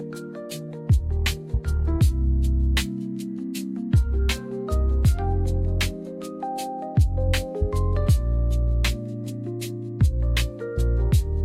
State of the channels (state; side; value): identical; both; correlation 1.00